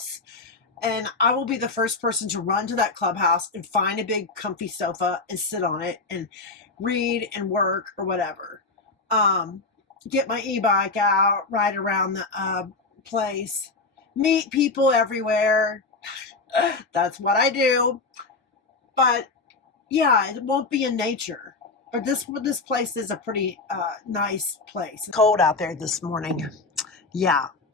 And I will be the first person to run to that clubhouse and find a big, comfy sofa and sit on it and read and work or whatever. Get my e-bike out, ride around the place, meet people everywhere. That's what I do. But yeah, it won't be in nature. But this place is a pretty nice place. It's cold out there this morning. Yeah,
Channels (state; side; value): quieter; right; 3.8 dB